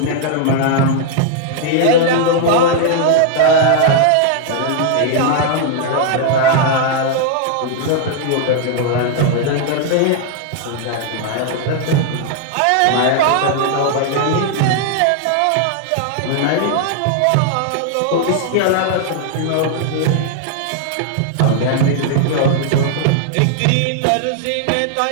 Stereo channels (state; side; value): different; both; correlation 0.00